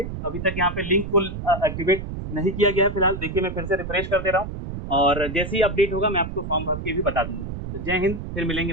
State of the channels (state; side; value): noise; right; rumble, 7 dB below the sound